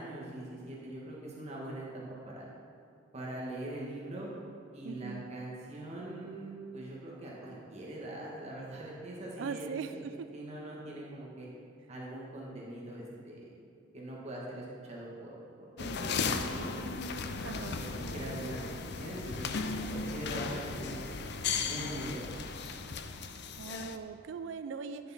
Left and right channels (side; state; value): both; normal; correlation 0.32